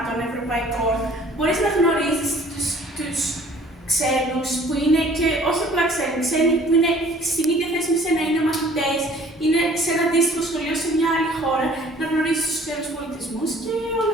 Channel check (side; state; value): both; normal; correlation 0.53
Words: ευρωπαϊκών, μπορείς να γνωρίζεις τους ξένους που είναι και όχι απλά ξένοι που είναι στην ίδια θέση με σένα, είναι μαθητές, είναι σε ένα αντίστοιχο σχολείο σε μια άλλη χώρα, να γνωρίζεις τους ξένους πολιτισμούς και όλα